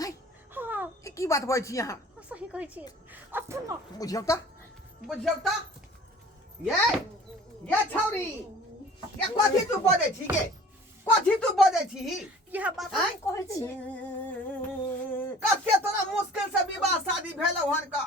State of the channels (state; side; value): normal; both; correlation 0.47